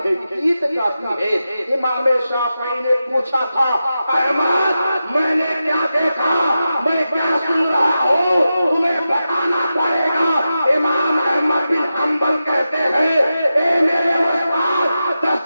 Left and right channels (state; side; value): inverted; both; correlation -0.91